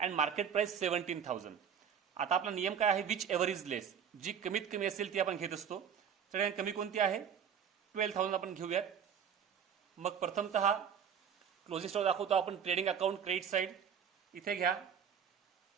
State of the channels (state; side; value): quieter; left; 7.8 dB